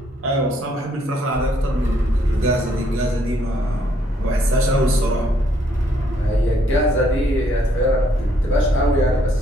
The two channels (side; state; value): both; normal; correlation 0.69